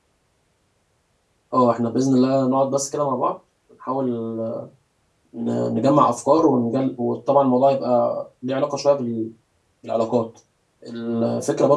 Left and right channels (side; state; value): both; identical; correlation 1.00